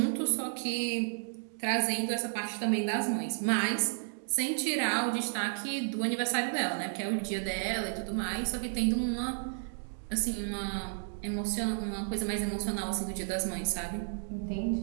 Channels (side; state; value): left; silent; digital silence